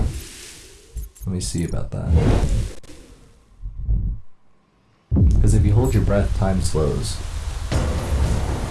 Let me see about that. Because if you hold your breath, time slows.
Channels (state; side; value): identical; both; correlation 1.00